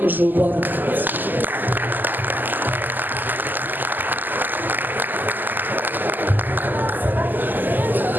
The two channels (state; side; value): late; left; 0.088 ms